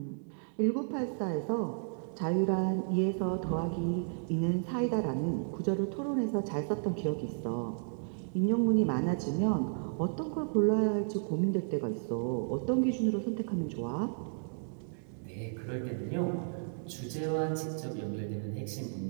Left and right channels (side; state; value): left; silent; digital silence